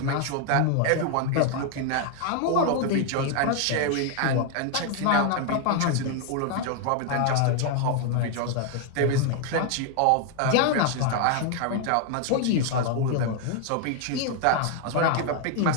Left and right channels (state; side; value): different; both; correlation 0.00